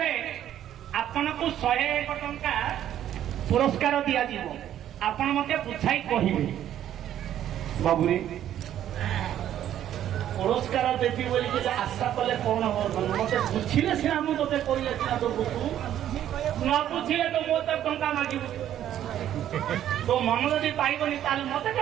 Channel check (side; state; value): left; quieter; 11.3 dB